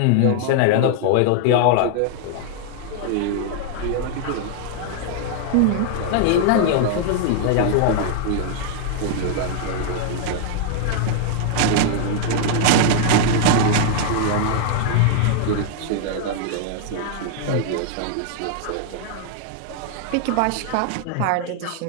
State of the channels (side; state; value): both; different; correlation 0.00